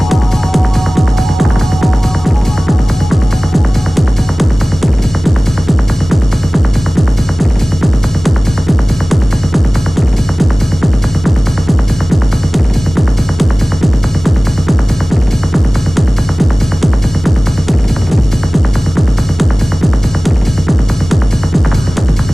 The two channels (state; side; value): normal; both; correlation 0.98